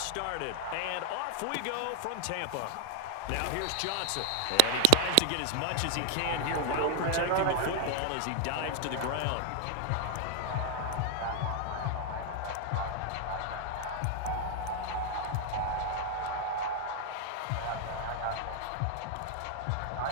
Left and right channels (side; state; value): both; different; correlation 0.00